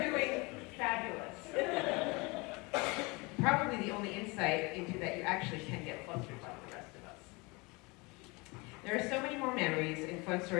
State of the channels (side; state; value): right; quieter; 26.5 dB